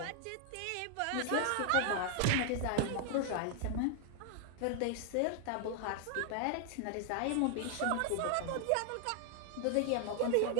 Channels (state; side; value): different; both; correlation 0.00